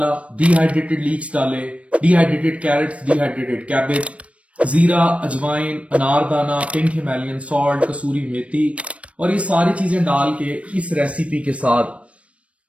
डिहाइड्रेटेड लीक्स डाले, डिहाइड्रेटेड कैरेट्स, डिहाइड्रेटेड कैबेज, जीरा, अजवाइन, अनारदाना, पिंक हिमालयन सॉल्ट, कसूरी मेथी, और ये सारी चीजें डाल के इस रेसिपी के साथ।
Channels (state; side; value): late; left; 0.063 ms